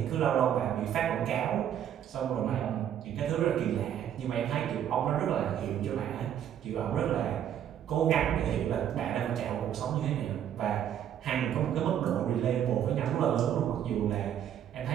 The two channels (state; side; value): quieter; left; 9.9 dB